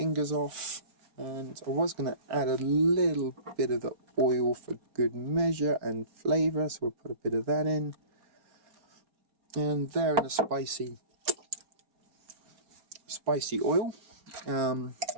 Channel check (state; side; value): late; left; 4.3 ms